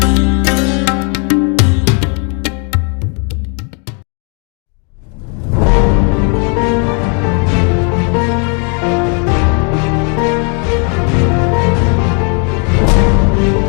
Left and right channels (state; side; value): quieter; right; 37.3 dB